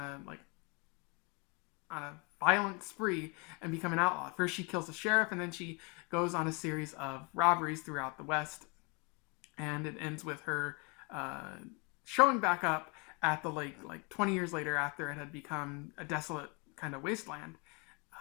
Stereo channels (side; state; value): right; quieter; 31.9 dB